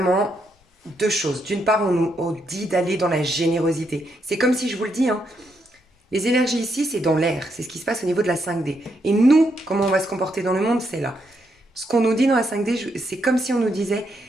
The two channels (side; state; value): both; normal; correlation 0.78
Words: deux choses. D'une part, on nous dit d'aller dans la générosité. C'est comme si je vous le dis, hein, les énergies ici, c'est dans l'air. C'est ce qui se passe au niveau de la 5D. Et nous, comment on va se comporter dans le monde, c'est là. Ce qu'on nous dit dans la 5D, c'est comme si on nous disait,